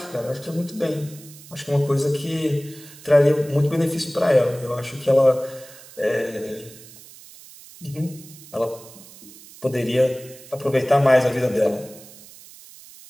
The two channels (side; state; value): right; noise; hiss, 20 dB below the sound